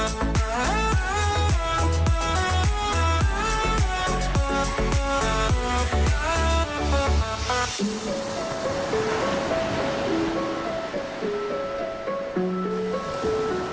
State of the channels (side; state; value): both; identical; correlation 1.00